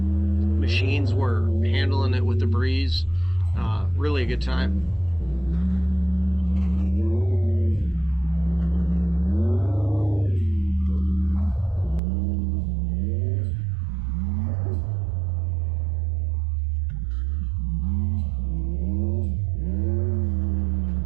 were handling it with the breeze. Really a good time.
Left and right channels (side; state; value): left; drops out; at 12.0 s